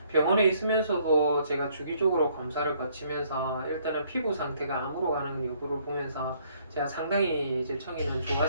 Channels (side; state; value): both; inverted; correlation -0.66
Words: 병원에 있으면서도 제가 주기적으로 검사를 거치면서 일단은 피부 상태가 암으로 가는 여부를 보면서 제가 상당히 이제 청이는